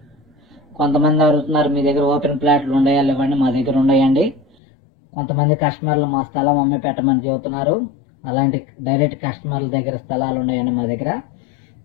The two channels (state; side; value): drops out; right; at 4.5 s